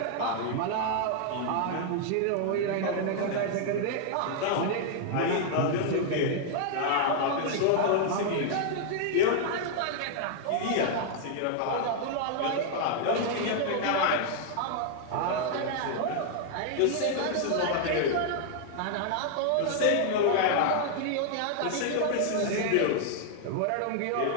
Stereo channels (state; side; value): different; both; correlation -0.01